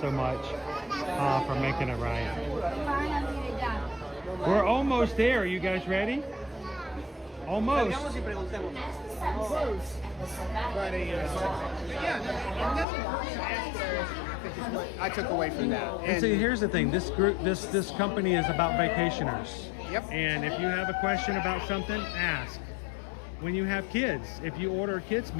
much for making it right. We're almost there. Are you guys ready? Almost. But I took away from that. And see, here's the thing. This company is about vacationers. Yep. And if you have a question about something, ask. When you have kids, if you order a kid's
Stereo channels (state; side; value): drops out; right; at 12.9 s